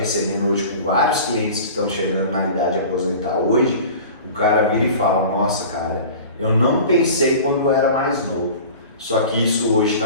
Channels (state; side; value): inverted; both; correlation -0.39